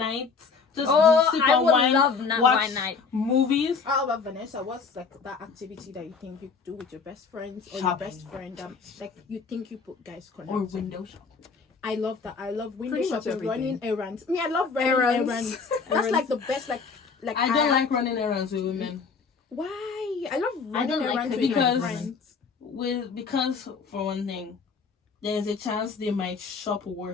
Just sip on wine, watch wine night. movies. How about Vanessa? What's like that activity that you think you do with your best friends or your Shopping. best friend? Like you think you put guys connect? Or window shop. I love that. I love window Pretty much shopping, running everything. errands. Me, I love running Errands. errands. That's like the best. Like I don't like running errands with women. Why? I love I don't running like errands cooking with my because- friends. Because for one thing, there's a chance they might shop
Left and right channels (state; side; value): quieter; right; 5.2 dB